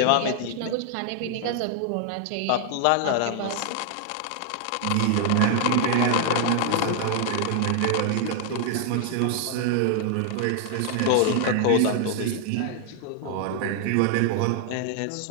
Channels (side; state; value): both; different; correlation 0.00